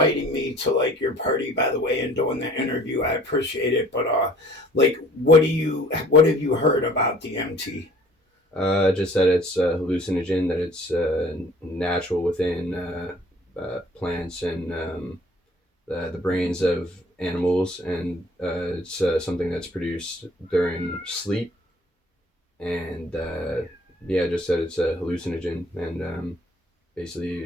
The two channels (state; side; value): normal; both; correlation 0.54